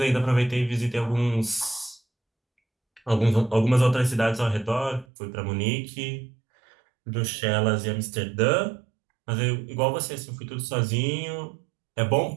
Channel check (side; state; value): left; drops out; at 5.1 s